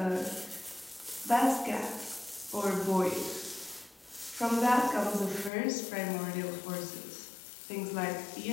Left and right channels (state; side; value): drops out; right; at 5.5 s